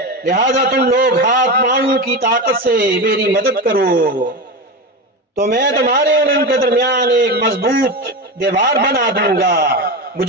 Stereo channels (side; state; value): both; normal; correlation 0.20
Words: लिहाजा तुम लोग हाथ पांव की ताकत से मेरी मदद करो, तो मैं तुम्हारे और उनके दरमियान एक मजबूत दीवार बना दूंगा।